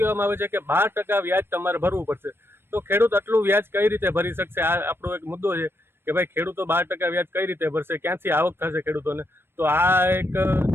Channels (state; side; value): late; left; 0.11 ms